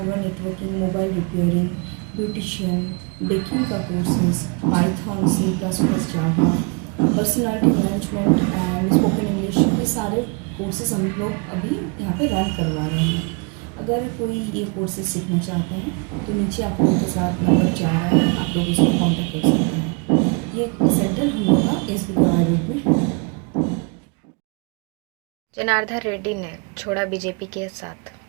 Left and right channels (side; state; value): left; quieter; 33.4 dB